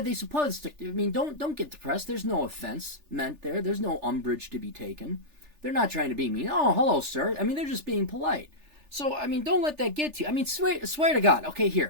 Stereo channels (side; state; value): left; late; 3.4 ms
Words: they supposed to? I mean, don't get depressed. There's no offense meant there. There's no umbrage to be taken. They're not trying to be mean. Oh, hello, sir. I mean, they're just being polite. So, I mean, don't let that get to you. I mean, swear to God. Okay,